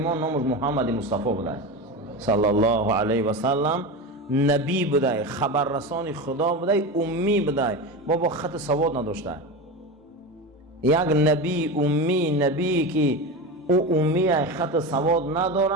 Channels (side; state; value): both; normal; correlation 0.23